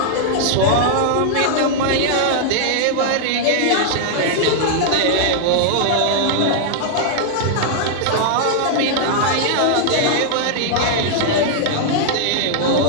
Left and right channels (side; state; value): both; different; correlation -0.01